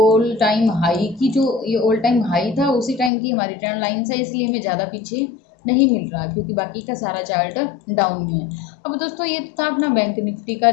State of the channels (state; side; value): drops out; right; at 3.1 s